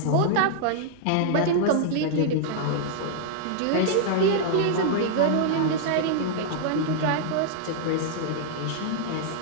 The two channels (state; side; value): different; both; correlation -0.01